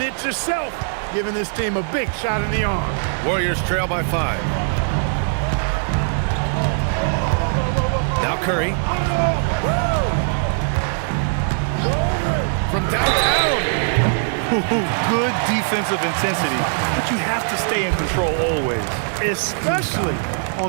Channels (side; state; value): left; silent; digital silence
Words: it yourself, giving this team a big shot in the arm. Warriors trail by 5. Now Curry. From downtown. Good defensive intensity, but you have to stay in control always. Especially